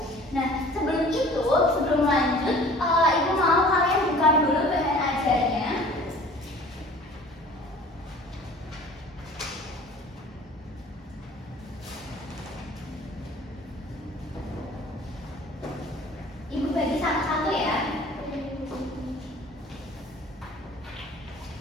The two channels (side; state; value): both; normal; correlation 0.47